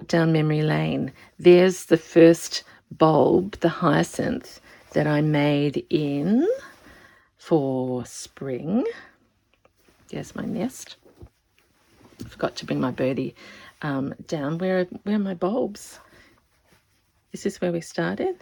down memory lane. There's the first bulb, the hyacinth, that I made in for spring. There's my nest. I forgot to bring my birdie down. Where are my bulbs? Is this where we started?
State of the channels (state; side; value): identical; both; correlation 1.00